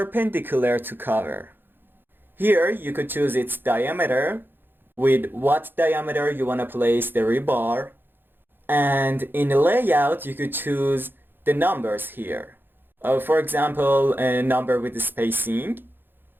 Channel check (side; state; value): left; late; 0.099 ms